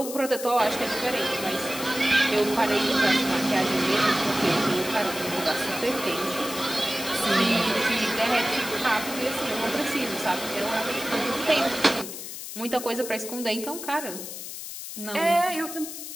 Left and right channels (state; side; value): noise; left; hiss, 9 dB below the sound